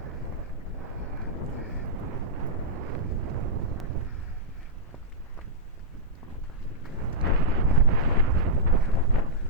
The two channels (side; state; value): both; normal; correlation -0.09